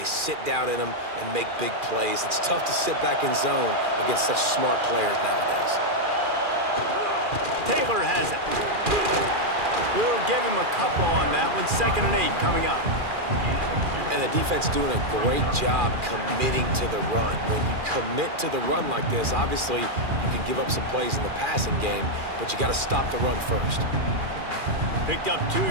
sit down in them and make big plays. It's tough to sit back in zone against such smart players nowadays. Taylor has it. We'll give him a couple on that one. 2nd and 8 coming up. And the defense doing a great job committing to the run. When you commit to the run like this, obviously you can give up some plays in the passing game, but you got to stop the run first. Picked up 2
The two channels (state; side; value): late; left; 2.4 ms